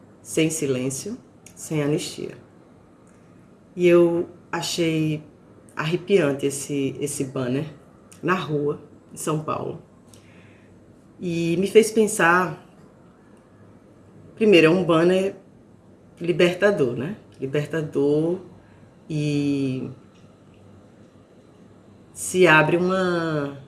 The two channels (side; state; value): both; identical; correlation 1.00